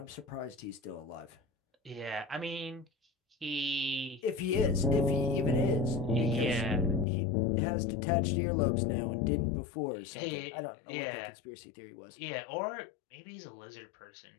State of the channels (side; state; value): right; drops out; at 7.1 s